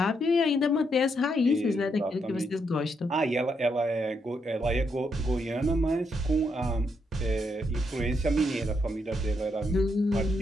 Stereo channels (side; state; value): both; normal; correlation 0.78